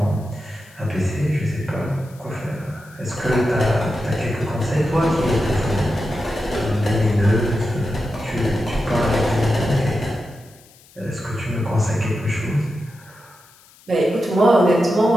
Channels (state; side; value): noise; left; hiss, 26 dB below the sound